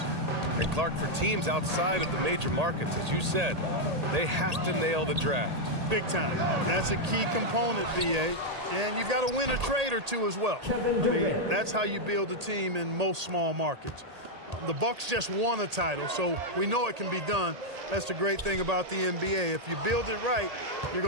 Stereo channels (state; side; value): late; left; 1.8 ms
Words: And Clark, for teams outside of the major markets, as you said, they have to nail the draft. Big time. That's a key component, BA. And you've got to win a trade or two as well. I mean, that's how you build a team in most small markets. The Bucks just won a title, so we know it can be done. That's the great thing about the NBA. If you build it right, you're